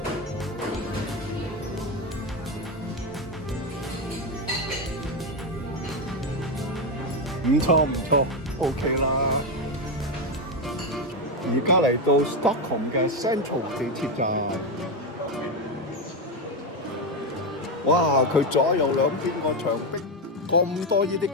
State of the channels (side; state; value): both; normal; correlation 0.09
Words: 唔錯唔錯 ，OK 啦。而家嚟到 Stockholm 嘅 Central 地鐵站。哇！佢左右兩邊個牆壁咁多呢啲